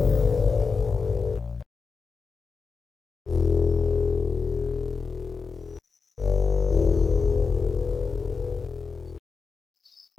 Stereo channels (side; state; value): right; quieter; 4.9 dB